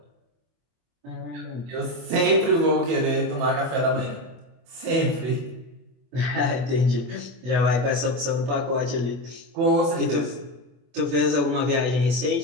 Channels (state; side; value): late; left; 24 ms